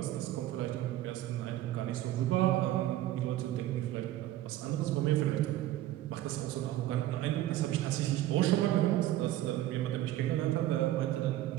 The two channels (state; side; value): quieter; left; 14.2 dB